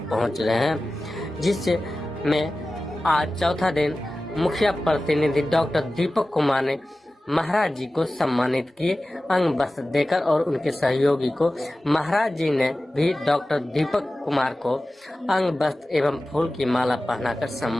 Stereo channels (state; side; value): normal; both; correlation 0.96